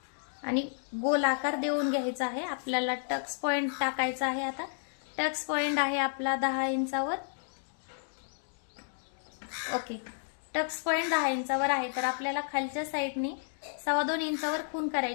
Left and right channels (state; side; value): silent; right; digital silence